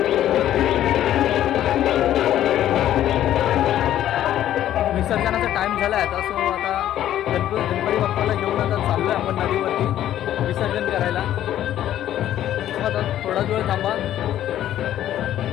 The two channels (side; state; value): right; quieter; 12.0 dB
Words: विसर्जनाचा टाइम झाला आहे आता. सो आता गणपती बाप्पाला घेऊन आता चाललो आहे आपण नदीवरती विसर्जन करायला. आता थोडाच वेळ थांबा.